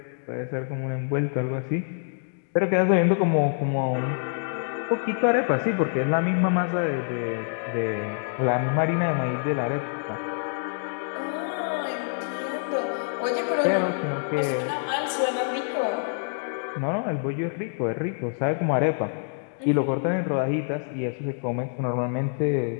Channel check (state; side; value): silent; right; digital silence